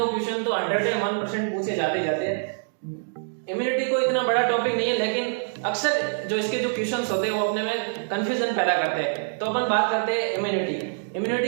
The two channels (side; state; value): left; silent; digital silence